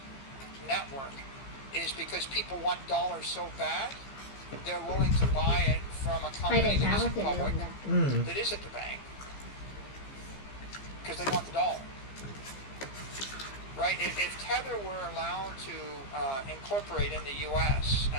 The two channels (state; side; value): late; right; 15 ms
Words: network is because people want dollars so bad, they're willing to buy it from a company that isn't public, that isn't the bank, because they want the dollar. Right? If Tether were allowed to incorporate in the U.S.